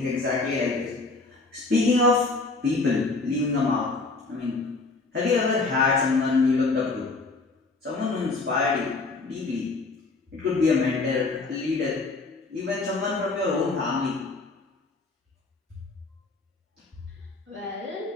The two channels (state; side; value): quieter; right; 3.7 dB